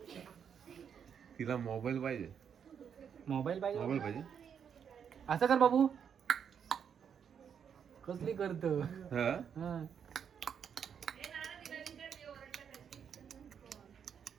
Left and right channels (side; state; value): left; quieter; 7.7 dB